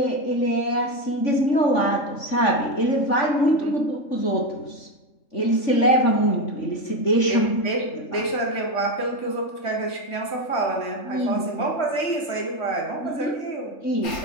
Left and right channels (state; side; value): late; right; 3.2 ms